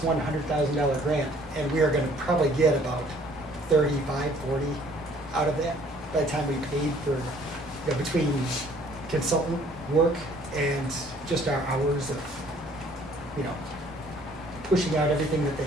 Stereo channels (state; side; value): normal; both; correlation 0.58